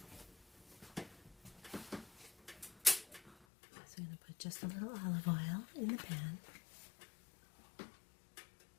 So I'm going to put just a little olive oil in the pan.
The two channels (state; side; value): drops out; right; at 3.5 s